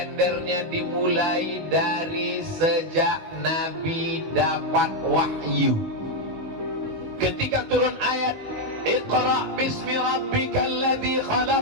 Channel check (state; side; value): late; left; 18 ms